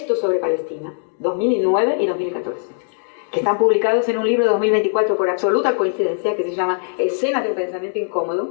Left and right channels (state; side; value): silent; right; digital silence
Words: sobre Palestina, 2009 y 2014. Que están publicados en un libro de 2024 por absoluta coincidencia, que se llama Escenas de un pensamiento